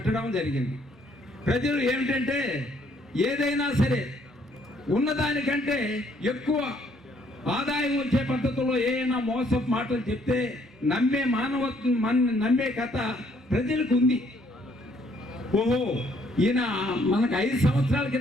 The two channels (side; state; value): both; normal; correlation 0.66